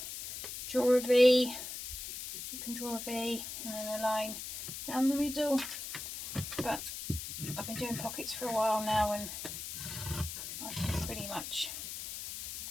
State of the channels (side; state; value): left; noise; hiss, 7 dB below the sound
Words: draw a V, you can draw a V and then a line down the middle, but I've been doing pockets for a while now and I can pretty much